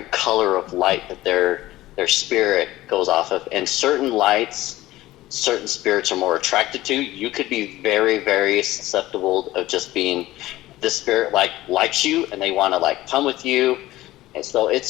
color of light that their spirit goes off of, and certain lights, certain spirits are more attracted to. You could be very, very susceptible of just being, this spirit likes you and they want to come with you. And so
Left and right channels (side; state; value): right; quieter; 16.5 dB